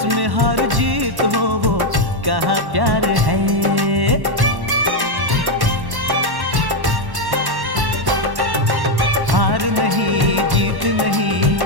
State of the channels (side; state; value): left; late; 1.1 ms